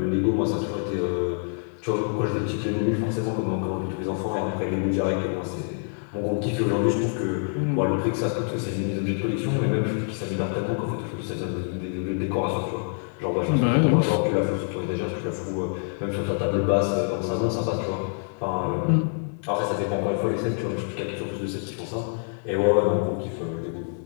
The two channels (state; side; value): silent; right; 61 dB below the other